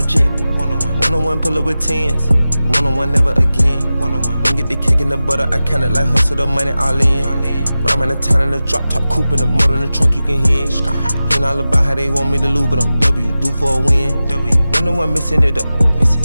jet. One-on-one, pull up with tens. One-on-one, never again. One-on-one, when get the cake in the butter, I count it like hustle the money all in. Rhyme in the town in the drop top coupe in the motor in the trunk, you can hear. Hearing all about how they want me to lose, but I'm W, due for a win. One-on-one, missing it up.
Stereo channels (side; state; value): both; inverted; correlation -0.94